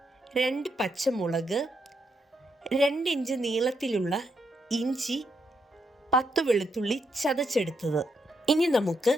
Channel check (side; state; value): both; normal; correlation 0.79